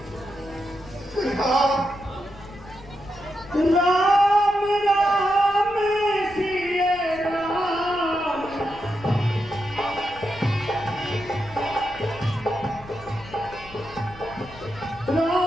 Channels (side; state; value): left; noise; rumble, 19 dB below the sound